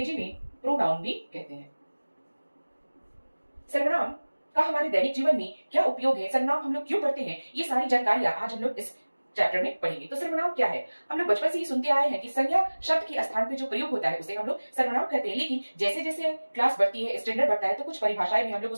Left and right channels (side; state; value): both; inverted; correlation -1.00